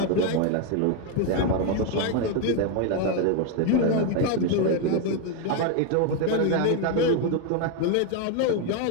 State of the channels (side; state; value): both; different; correlation 0.01